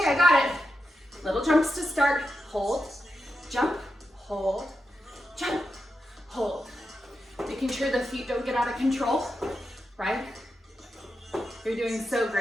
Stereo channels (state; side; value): normal; both; correlation 0.88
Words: I got it. Little jumps to start. Hold, jump, hold, jump, hold. Making sure the feet don't get out of control, right? You're doing so